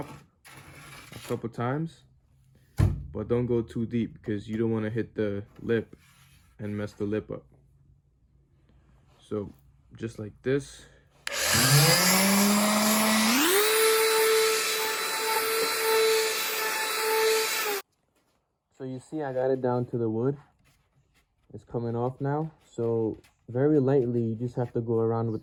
a couple times, but don't go too deep because you don't want to hit the lip and mess the lip up. So just like this. So you see I got it down to the wood. It's coming off now. So very lightly, you just have to go around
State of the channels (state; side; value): identical; both; correlation 1.00